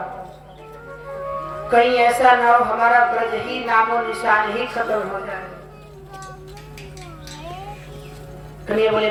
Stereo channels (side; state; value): both; identical; correlation 1.00